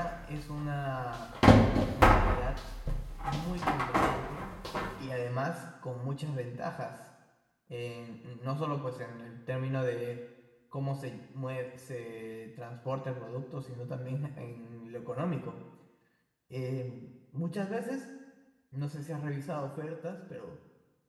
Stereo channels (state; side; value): identical; both; correlation 1.00